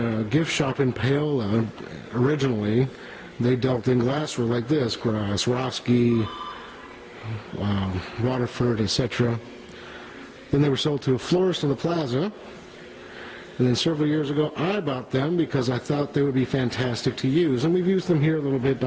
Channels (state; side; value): identical; both; correlation 1.00